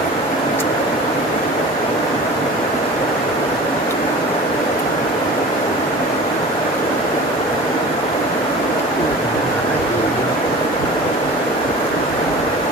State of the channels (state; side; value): normal; both; correlation 0.39